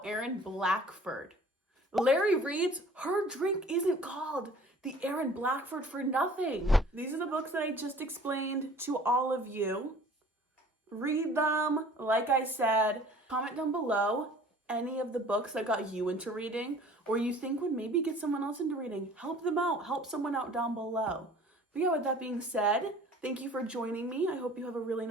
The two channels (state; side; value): normal; both; correlation 0.49